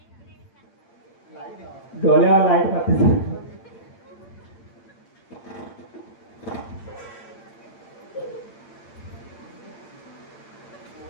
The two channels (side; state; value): right; late; 8.8 ms